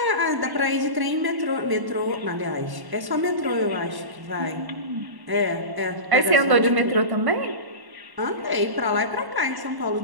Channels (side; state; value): left; late; 1.1 ms